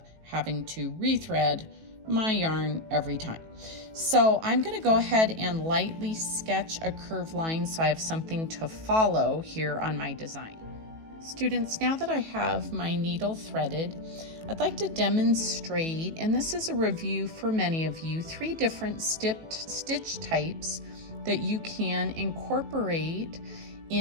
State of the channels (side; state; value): left; late; 18 ms